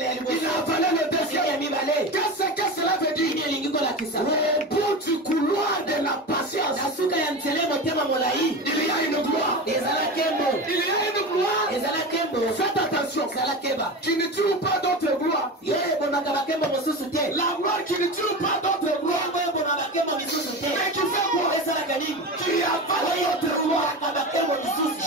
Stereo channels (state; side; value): normal; both; correlation 0.26